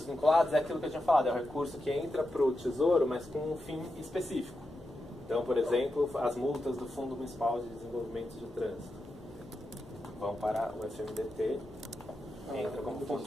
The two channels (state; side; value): normal; both; correlation 0.88